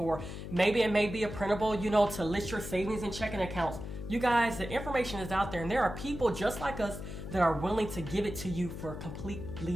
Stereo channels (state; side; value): noise; left; hum, 8 dB below the sound